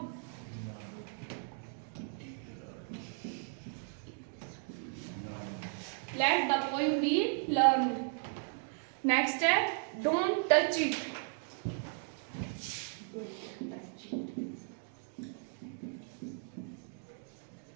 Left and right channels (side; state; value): left; silent; 54 dB below the other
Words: late the poem be learn. Next है डोंट टच इट।